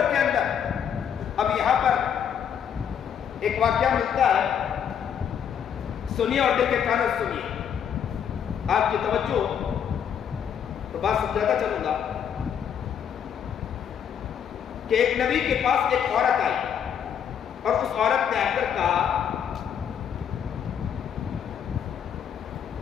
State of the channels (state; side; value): quieter; right; 8.4 dB